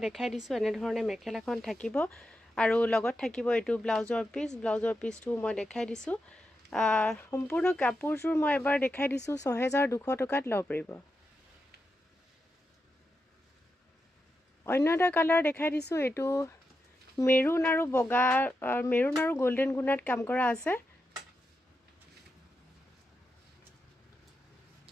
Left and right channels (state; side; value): normal; both; correlation 0.87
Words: দেখাই দিছোঁ। এনেধৰণে মেখেলাখন থাকিব আৰু লগত থাকিব এইটো ব্লাউজৰ পিচ। ব্লাউজৰ পিচটো মই দেখাই দিছোঁ। সম্পূৰ্ণ কাপোৰযোৰ মই এবাৰ দেখাই দিছোঁ। 6200 টকাত ল'ব পাৰিব। অন্য এটা কালাৰ দেখাই দিছোঁ। এইটো মেৰুন আৰু বগা, মেৰুন আৰু গল্ডেন গুণাত কাম কৰা আছে।